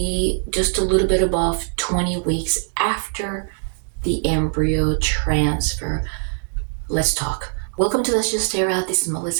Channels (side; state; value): left; silent; digital silence